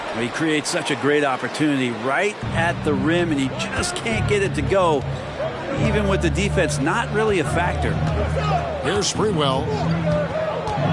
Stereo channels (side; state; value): both; identical; correlation 1.00